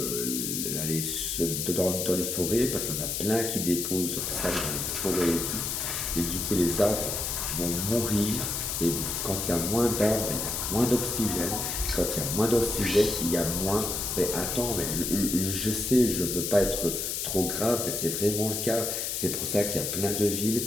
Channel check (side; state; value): left; noise; hiss, 2 dB below the sound